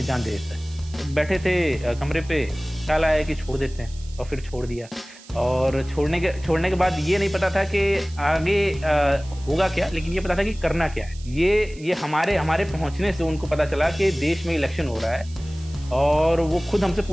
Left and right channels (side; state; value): right; noise; hiss, 22 dB below the sound